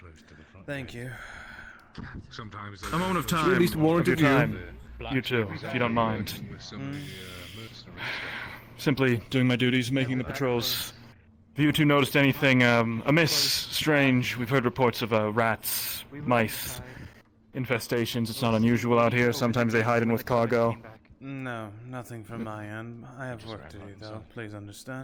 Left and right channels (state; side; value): identical; both; correlation 1.00